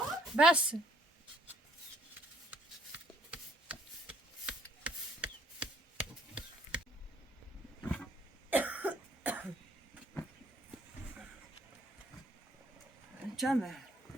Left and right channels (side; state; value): both; normal; correlation 0.65